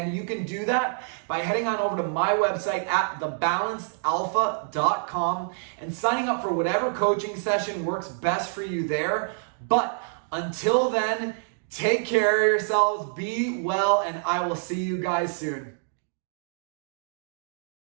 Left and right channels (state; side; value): silent; left; digital silence